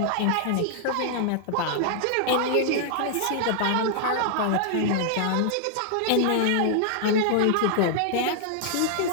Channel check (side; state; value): both; different; correlation 0.00